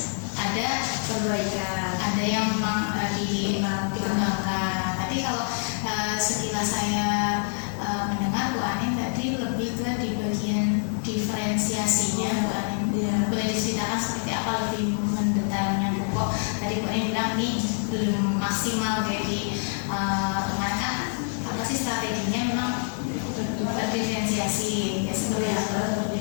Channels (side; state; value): right; silent; 61 dB below the other